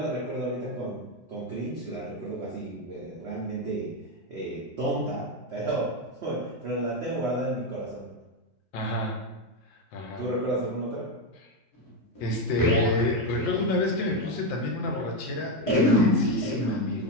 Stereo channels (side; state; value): both; normal; correlation 0.08